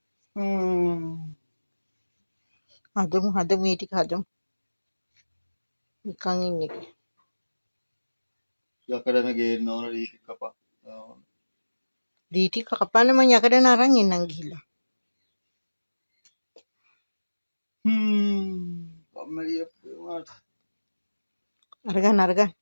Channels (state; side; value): inverted; both; correlation -1.00